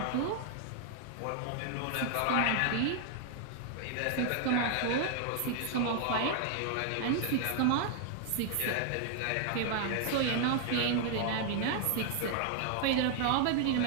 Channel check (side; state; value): both; different; correlation 0.00